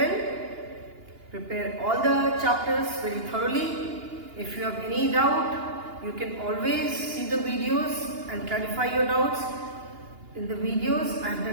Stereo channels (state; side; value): late; left; 2.8 ms